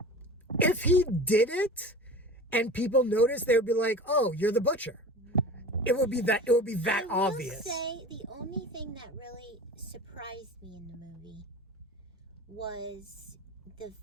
if he did it and people noticed, they would be like, "Oh, you're the butcher." It would be that obvious. I will say the only thing that really surprised me in the movie was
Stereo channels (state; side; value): normal; both; correlation 0.36